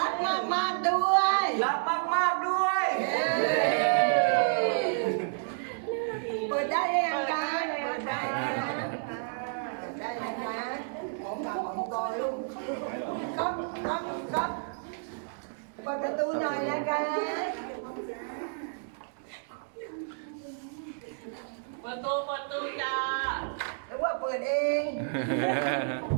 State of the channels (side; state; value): left; silent; digital silence